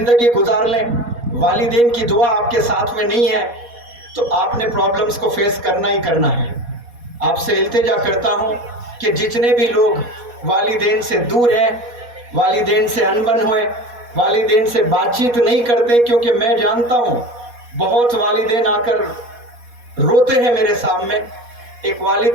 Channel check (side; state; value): left; late; 4.2 ms